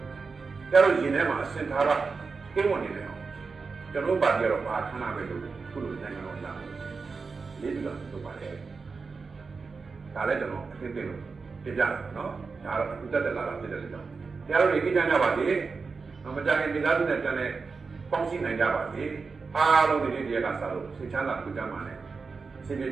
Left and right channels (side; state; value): left; quieter; 4.7 dB